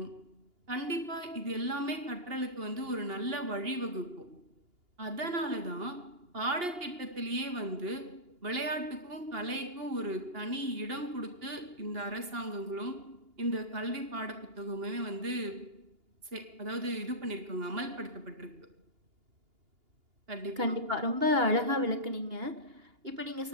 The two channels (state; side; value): late; left; 2.8 ms